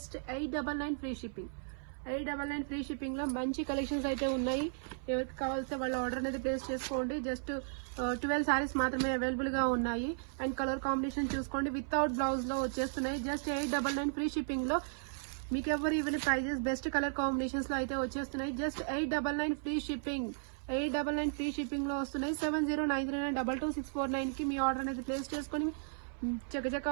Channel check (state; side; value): silent; left; 54 dB below the other